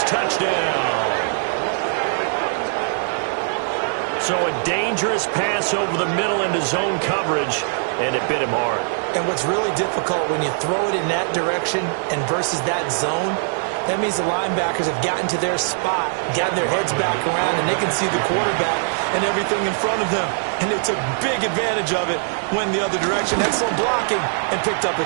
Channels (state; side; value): silent; left; 65 dB below the other